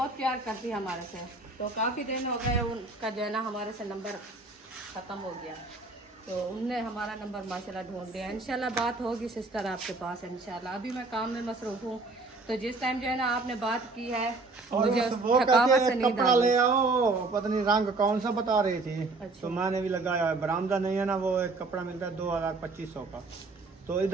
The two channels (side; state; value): left; quieter; 3.5 dB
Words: प्यार करती है हमारे से। तो काफ़ी दिन हो गए उनका जो है ना हमारे से नंबर ख़त्म हो गया, तो उनने हमारा नंबर माशाल्लाह ढूंढ लिया। इंशाल्लाह बात होगी सिस्टर आपके पास इंशाल्लाह। अभी मैं काम में मसरूफ हूँ, तो जिस टाइम जो है ना आपने बात की है और मुझे वो थकावट कहते से हैं नींद कपड़ा आ ले गई। आओ, पता नहीं रंग कौन सा बता रही थी, अच्छा। तो मैंने भी लगाया है। बरामदा नहीं है ना, वो एक कपड़ा मिलता है 2200 का, तो